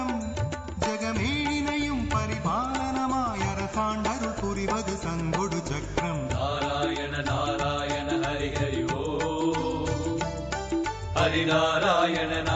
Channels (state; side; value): identical; both; correlation 1.00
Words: ஜகமேழினையும் பரிபாலனமாய் அரசாண்டருள் புரிவது சங்கொடு சக்கரம். நாராயண நாராயண ஹரி ஹரி ஓ ஹரி நாராயண